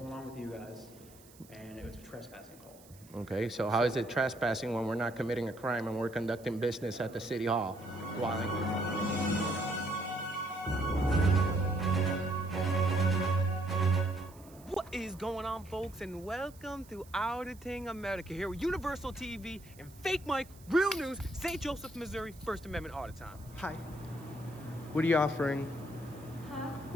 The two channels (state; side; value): noise; right; hiss, 24 dB below the sound